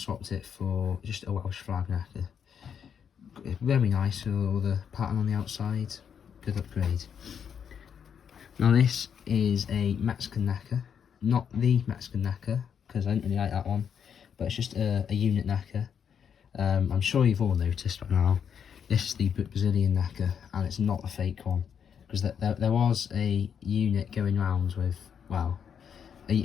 it for just a Welsh flag necker. Very nice with all the pattern on the outside. Good upgrade. Now this is a Mexican necker. Not the Mexican necker, because I didn't really like that one, but it's just a unit necker. I'm sure you've all noticed by now, this is the Brazilian necker, and it's not a fake one, because there was a unit going around with, well, a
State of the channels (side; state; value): right; quieter; 7.7 dB